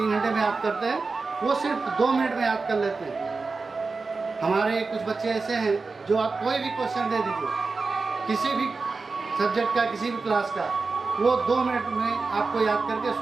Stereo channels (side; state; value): left; quieter; 4.1 dB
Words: घंटे में याद करते हैं, वो सिर्फ 2 मिनट में याद कर लेते हैं। हमारे कुछ बच्चे ऐसे हैं जो आप कोई भी क्वेश्चन दे दीजिए, किसी भी सब्जेक्ट का, किसी भी क्लास का, वो 2 मिनट में आपको याद करके